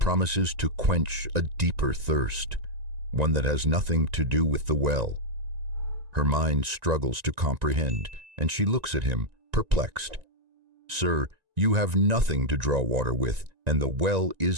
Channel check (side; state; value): left; late; 1.9 ms